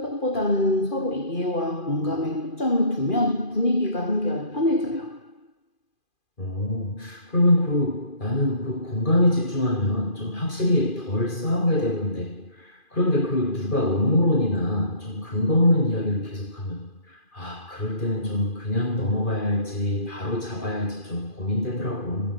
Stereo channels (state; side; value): late; right; 2.4 ms